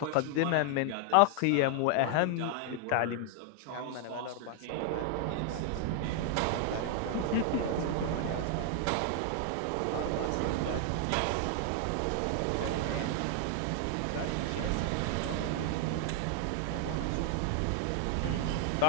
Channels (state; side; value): different; both; correlation 0.00